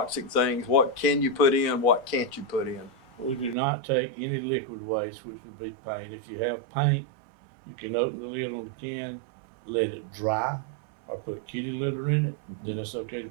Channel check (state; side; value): drops out; left; at 3.6 s